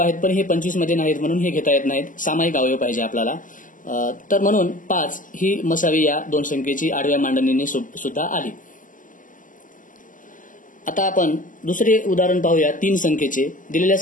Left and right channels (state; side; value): late; right; 0.38 ms